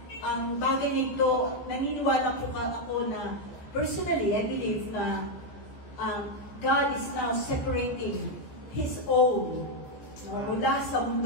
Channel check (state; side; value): late; right; 14 ms